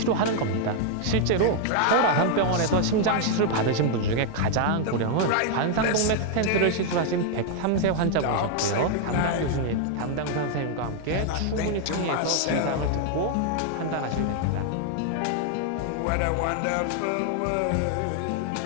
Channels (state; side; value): different; both; correlation 0.00